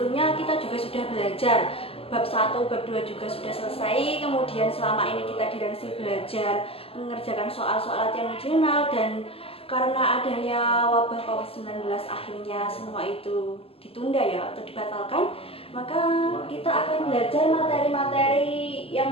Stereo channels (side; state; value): right; late; 0.27 ms